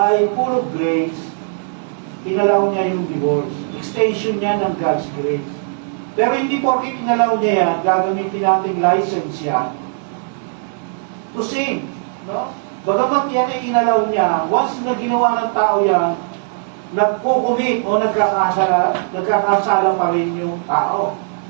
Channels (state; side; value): silent; left; digital silence